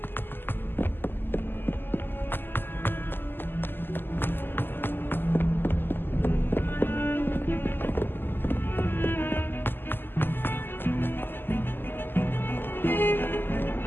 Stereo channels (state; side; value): late; right; 0.096 ms